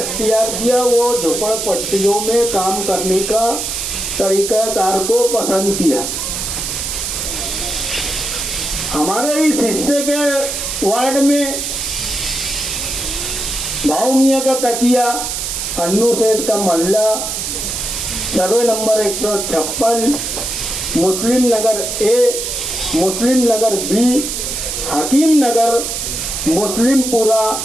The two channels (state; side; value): noise; right; hiss, 3 dB below the sound